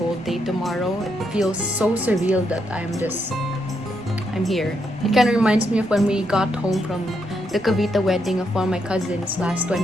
day tomorrow. It feels so surreal that I'm here. It kind of reminds me of when we got home from the Cavite wedding of one of my cousins last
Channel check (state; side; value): normal; both; correlation 0.79